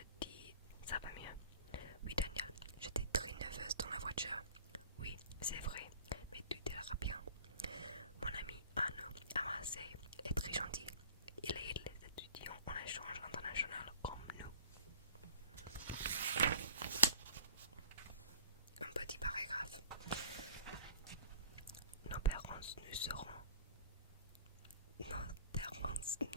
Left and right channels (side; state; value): both; inverted; correlation -0.48